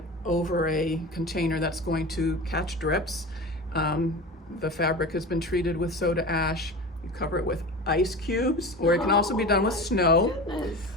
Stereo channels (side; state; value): both; normal; correlation 0.31